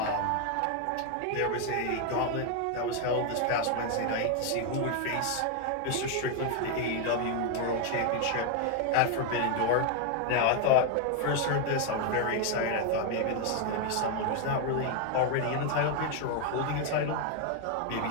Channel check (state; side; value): different; both; correlation 0.01